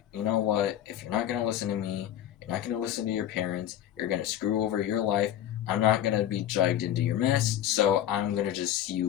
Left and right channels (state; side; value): quieter; right; 11.4 dB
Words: you know what? If you're not going to listen to me, you're not going to listen to your parents, you're going to screw over your life, I'm not going to be dragged into your mess, so I'm going to just see